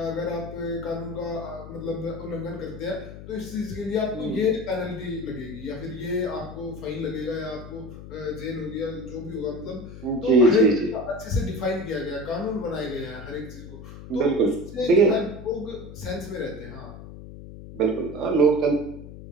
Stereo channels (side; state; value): left; noise; hum, 13 dB below the sound